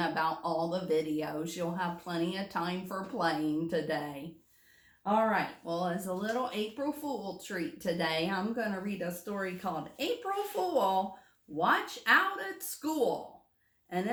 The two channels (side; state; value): both; identical; correlation 1.00